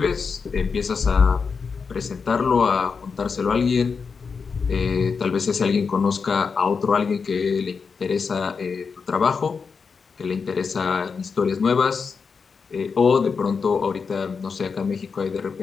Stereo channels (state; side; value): quieter; right; 5.4 dB